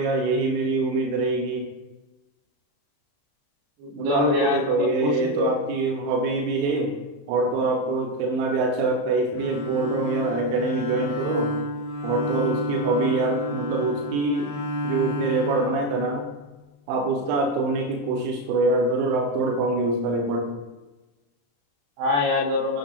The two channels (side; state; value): left; late; 35 ms